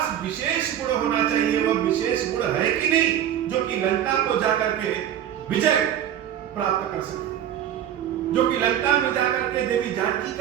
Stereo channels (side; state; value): left; quieter; 10.4 dB